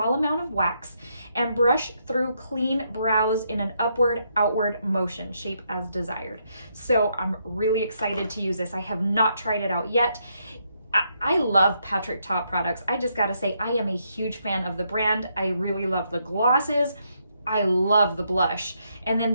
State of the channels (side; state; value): both; inverted; correlation -0.77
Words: amount of wax, and brush through clean brows in an upward-outward motion, shape as desired. So I'm really excited to use this. I have not tried it out yet. I love Patrick Ta products. I just gotta say, I am a huge fan of the brand. I really love the glosses. I love the blush, and then